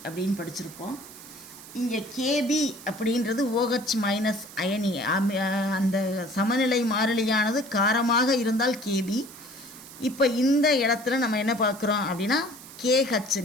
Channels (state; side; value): noise; right; hiss, 17 dB below the sound